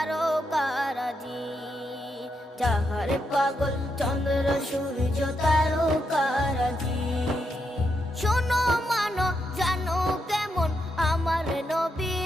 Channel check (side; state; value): both; normal; correlation 0.82